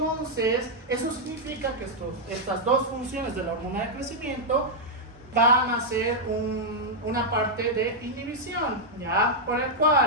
eso significa que estas dos funciones de la hormona de crecimiento van a ser una parte de inhibición, ¿ya? Por el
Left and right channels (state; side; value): normal; both; correlation -0.04